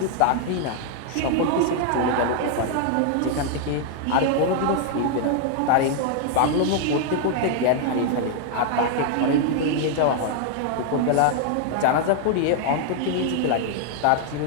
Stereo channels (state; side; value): different; both; correlation 0.00